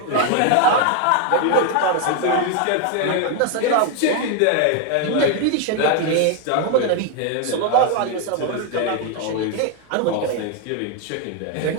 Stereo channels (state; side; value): different; both; correlation 0.01